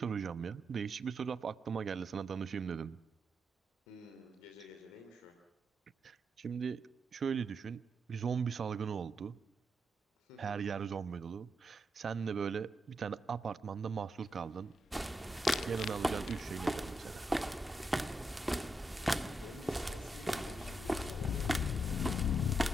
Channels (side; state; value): both; normal; correlation 0.83